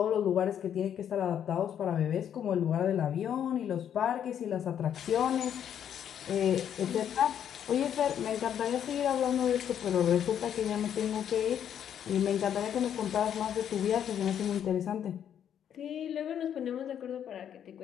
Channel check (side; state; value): right; quieter; 9.3 dB